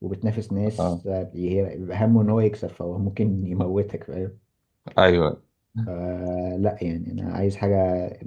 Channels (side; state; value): both; identical; correlation 1.00